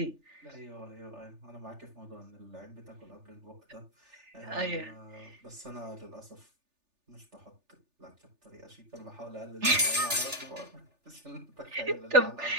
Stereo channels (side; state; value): left; late; 3.4 ms